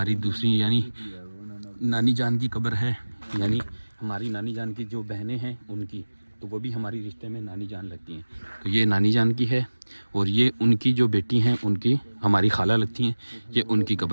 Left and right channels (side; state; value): both; inverted; correlation -1.00